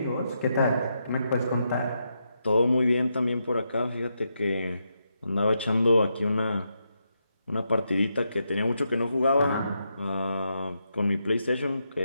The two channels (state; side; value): inverted; both; correlation -0.83